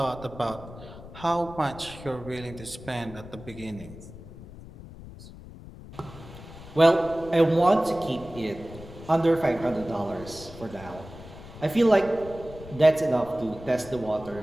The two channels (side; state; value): left; noise; rumble, 16 dB below the sound